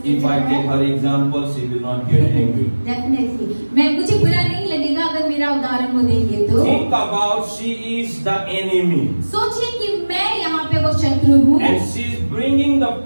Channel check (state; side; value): inverted; both; correlation -1.00